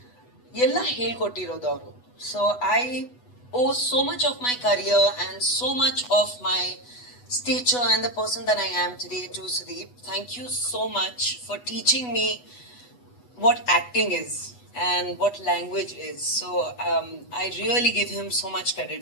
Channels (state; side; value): late; right; 8.1 ms